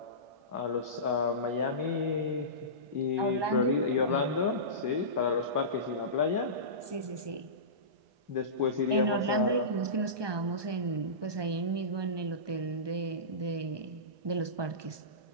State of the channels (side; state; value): left; late; 1.2 ms